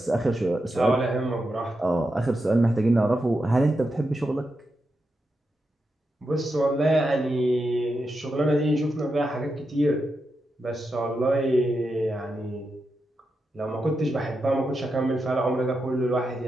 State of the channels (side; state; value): both; normal; correlation 0.87